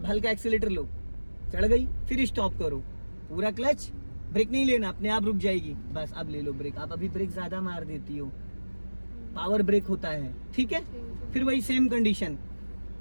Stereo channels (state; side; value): inverted; both; correlation -1.00